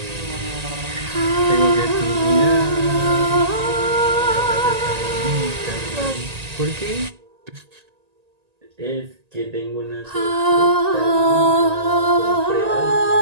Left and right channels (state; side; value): late; left; 1.8 ms